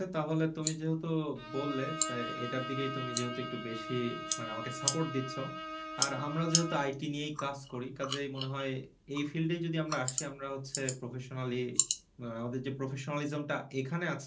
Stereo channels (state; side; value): identical; both; correlation 1.00